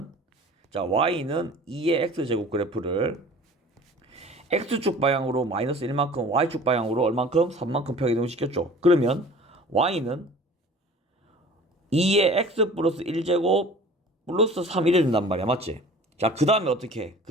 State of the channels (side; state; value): both; normal; correlation 0.45